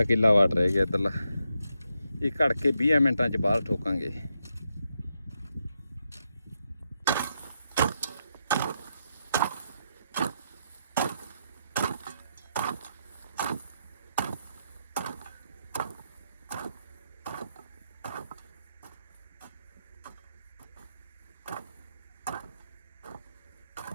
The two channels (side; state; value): both; inverted; correlation -0.83